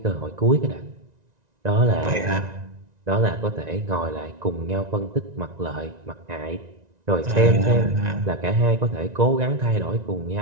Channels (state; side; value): late; left; 1.9 ms